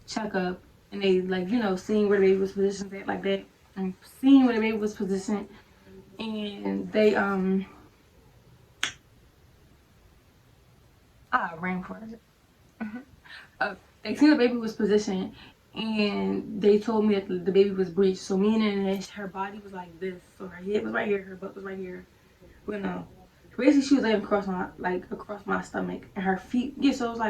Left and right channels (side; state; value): both; identical; correlation 1.00